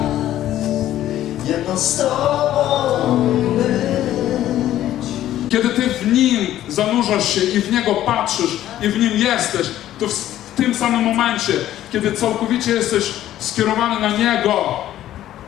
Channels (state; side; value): quieter; right; 12.8 dB